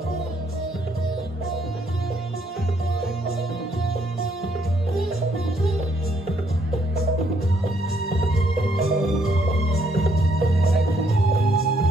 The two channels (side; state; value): both; normal; correlation 0.70